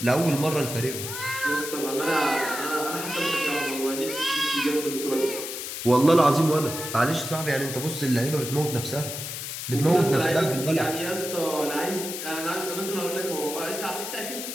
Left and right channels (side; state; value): left; noise; hiss, 6 dB below the sound